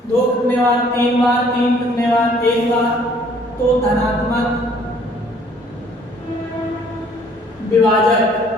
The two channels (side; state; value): both; normal; correlation 0.59